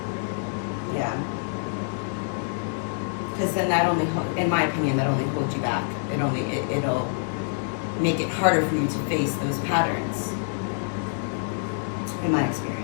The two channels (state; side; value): silent; right; digital silence